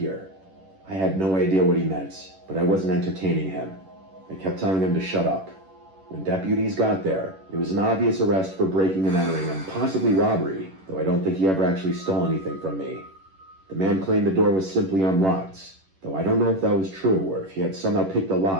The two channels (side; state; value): left; late; 11 ms